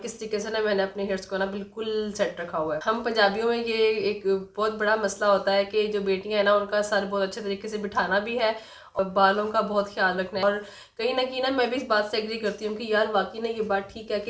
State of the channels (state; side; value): identical; both; correlation 1.00